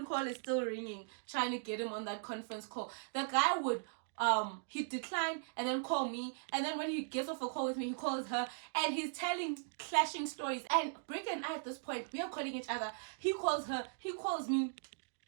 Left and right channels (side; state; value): left; silent; digital silence